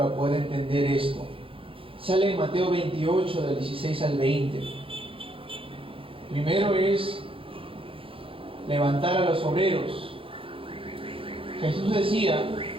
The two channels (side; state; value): left; late; 0.26 ms